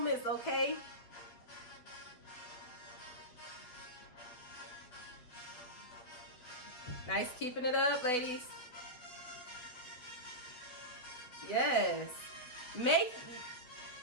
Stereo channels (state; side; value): late; right; 8.3 ms